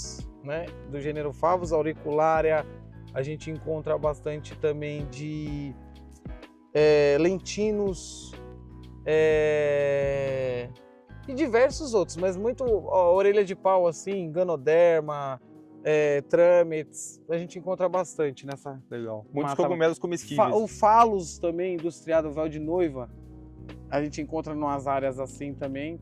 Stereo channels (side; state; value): both; identical; correlation 1.00